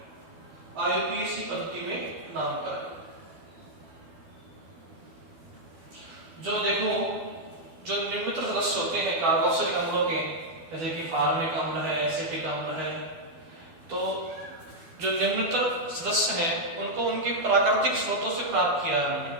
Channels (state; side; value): late; left; 12 ms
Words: आईयूपीएसी पद्धति में नामकरण। जो देखो, जो निम्नतर सदस्य होते हैं कार्बोक्सिलिक अम्लों के, जैसे कि फार्मिक अम्ल है, एसिटिक अम्ल है, तो जो निम्नतर सदस्य हैं उनको उनके प्राकृतिक स्रोतों से प्राप्त किया है हमने।